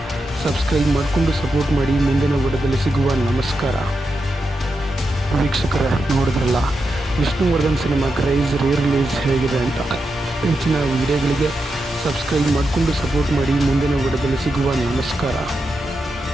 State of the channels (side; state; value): both; normal; correlation 0.87